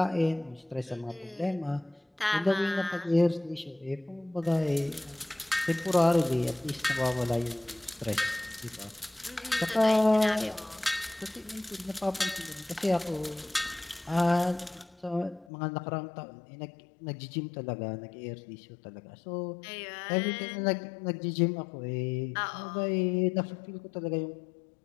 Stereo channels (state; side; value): drops out; right; at 15.5 s